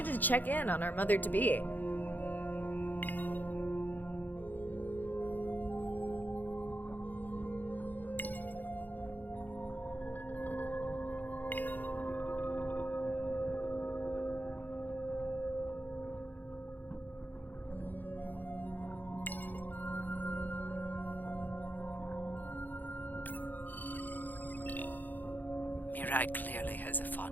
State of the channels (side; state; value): right; late; 0.085 ms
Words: to check in on our mother-to-be. Mirai clearly has a